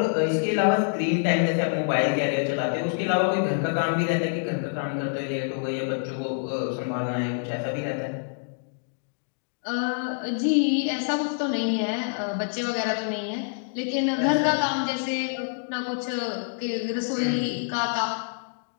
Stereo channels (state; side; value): silent; right; digital silence